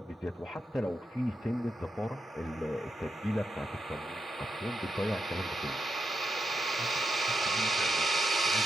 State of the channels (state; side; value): normal; both; correlation 0.84